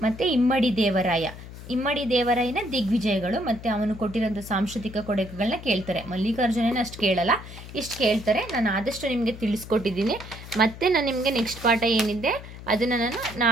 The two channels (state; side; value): noise; left; hum, 14 dB below the sound